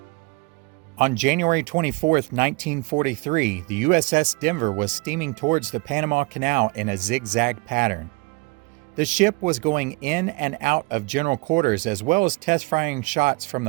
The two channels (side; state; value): left; quieter; 26.2 dB